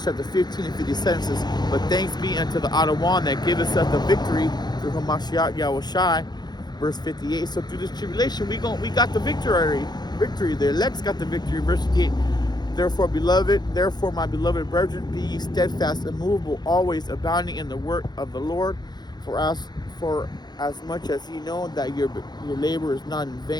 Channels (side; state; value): right; late; 0.20 ms